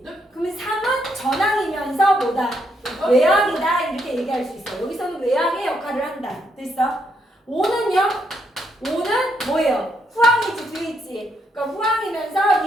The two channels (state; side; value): normal; both; correlation 0.77